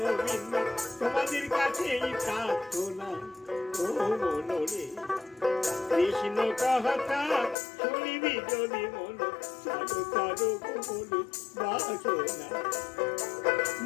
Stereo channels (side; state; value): right; drops out; at 7.6 s